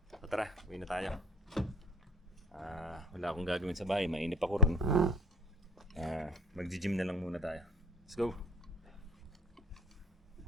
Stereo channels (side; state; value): both; normal; correlation 0.48